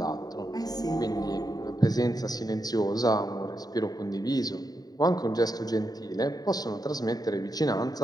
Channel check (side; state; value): right; late; 0.18 ms